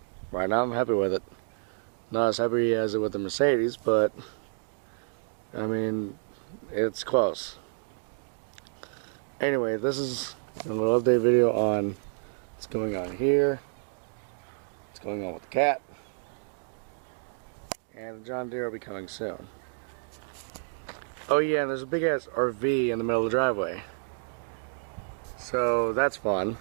right now I'm happy with it. Not as happy as it with the Mercedes, but I mean, it's close. Anyway, this is a little update video on what's going on here, what's going on with the cat, and the John Deere will be coming soon. Oh yeah, and there's a big ass RV in the middle of the driveway. So that's fun.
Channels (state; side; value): silent; left; digital silence